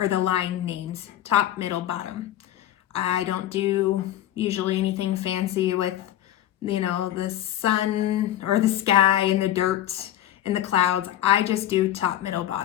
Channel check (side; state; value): right; quieter; 12.6 dB